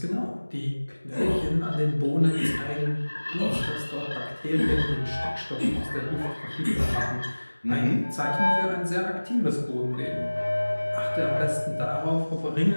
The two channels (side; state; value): both; inverted; correlation -1.00